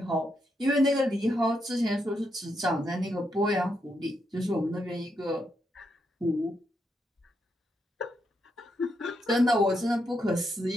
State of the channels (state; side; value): normal; both; correlation 0.81